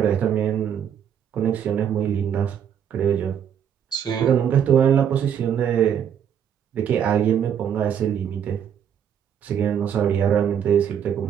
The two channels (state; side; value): quieter; left; 8.6 dB